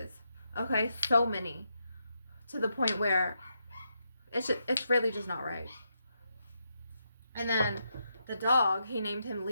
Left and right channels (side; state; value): both; inverted; correlation -0.82